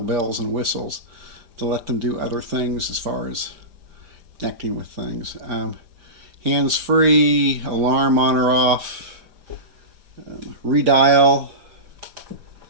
bells and whistles to let them do other things as far as connecting with things. Hands-free, alarm on or off, redial,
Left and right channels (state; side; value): late; left; 5.3 ms